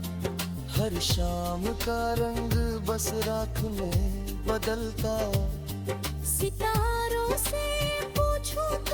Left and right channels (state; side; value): identical; both; correlation 1.00